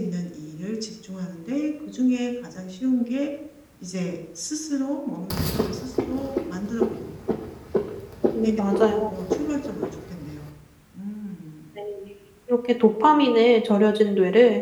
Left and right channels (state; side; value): identical; both; correlation 1.00